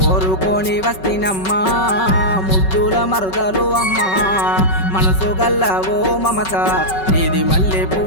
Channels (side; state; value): right; late; 5.3 ms